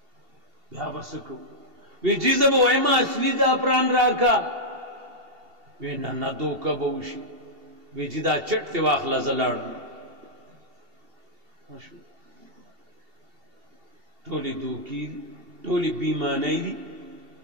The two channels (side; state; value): left; late; 2.7 ms